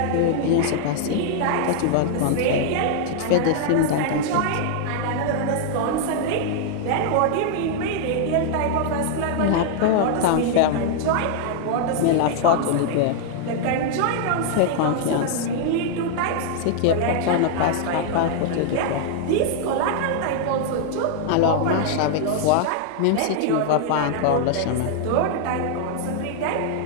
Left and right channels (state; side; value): different; both; correlation -0.01